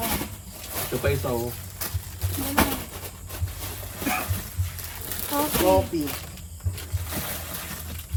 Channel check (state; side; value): identical; both; correlation 1.00